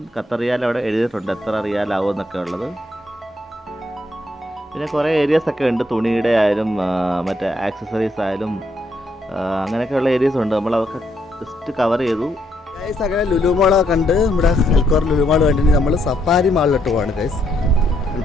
ഖത്തർ റിയാൽ അവിടെ എഴുതിയിട്ടുണ്ട് എത്ര റിയാലാവും എന്നൊക്കെ ഉള്ളത്. പിന്നെ കുറേ ഏരിയാസൊക്കെ ഉണ്ട്, തുണിയുടെ ആയാലും മറ്റേ ആക്സസറീസ് ആയാലും അങ്ങനെയൊക്കെയുള്ള ഏരിയസ് ഉണ്ട്. നമ്മളതൊക്കെ ജസ്റ്റ് കവർ ചെയ്തു. ഗൈസ് അങ്ങനെ ലുലു മാളൊക്കെ കണ്ട് നമ്മുടെ ഹെൽക്കോർ ലുലു മാൾ കണ്ടിട്ട് നമ്മൾ സഫാരി മാളിലോട്ട് പോവാണ് ഗൈസ്.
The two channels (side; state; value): both; normal; correlation 0.74